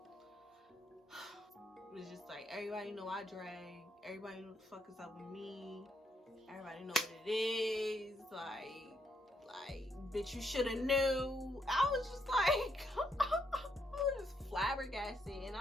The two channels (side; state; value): both; normal; correlation 0.75